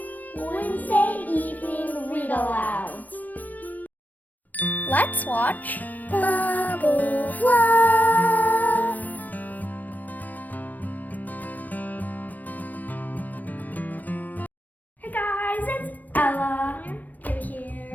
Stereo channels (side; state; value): right; late; 0.081 ms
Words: Wednesday Evening Read-Alouds. Let's watch Bubble Fluff! Hey guys, it's Ella